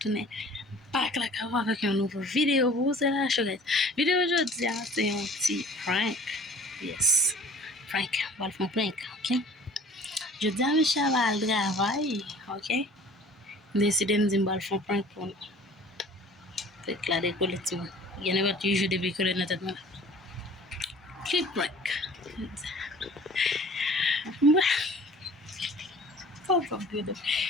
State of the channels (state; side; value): normal; both; correlation 0.48